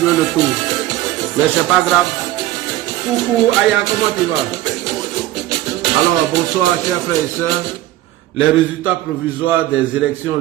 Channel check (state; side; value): quieter; left; 15.2 dB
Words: le tour. Mais c'est pas grave. Coucou Aya, comment tu vas? Alors bonsoir chers frères et sœurs. Les résultats provisoires des élections